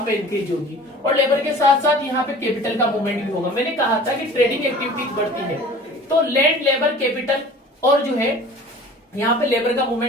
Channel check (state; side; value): normal; both; correlation 0.44